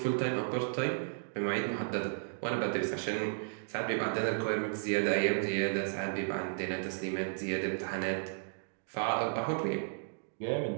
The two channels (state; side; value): silent; left; digital silence